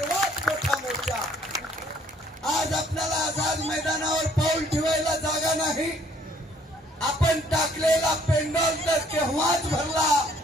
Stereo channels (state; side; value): normal; both; correlation 0.62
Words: मोठा मोर्चा। आज आपल्याला आझाद मैदानावर पाऊल ठेवायला जागा नाही। आपण टाकलेला पेंडॉल तर केव्हाच भरला,